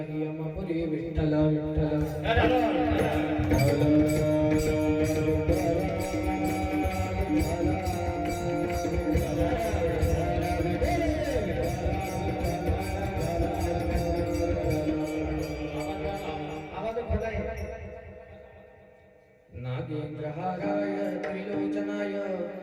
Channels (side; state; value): both; identical; correlation 1.00